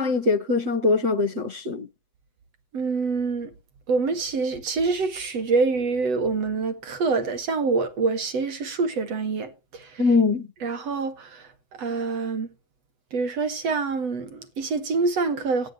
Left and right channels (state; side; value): late; left; 8.0 ms